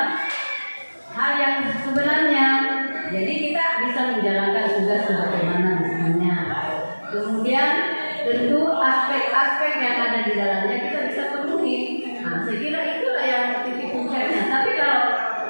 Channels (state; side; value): inverted; both; correlation -1.00